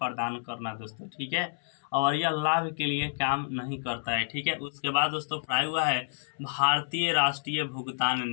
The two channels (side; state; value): right; silent; 58 dB below the other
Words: करना दोस्तों। ठीक है, और यह लाभ के लिए काम नहीं करता है। ठीक है, उसके बाद दोस्तों पढ़ाया हुआ है भारतीय राष्ट्रीय भुगतान